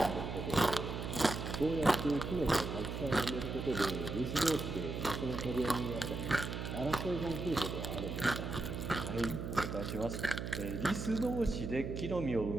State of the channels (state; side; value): noise; right; hum, 5 dB below the sound